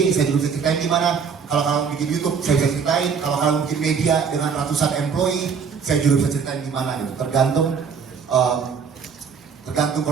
saya juga bisa ceritain gimana. Kalau kalian bikin YouTube, saya bisa ceritain. Kalau kalian bikin media dengan ratusan employee, saya juga bisa ceritain gimana gitu. Tergantung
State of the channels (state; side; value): quieter; left; 6.3 dB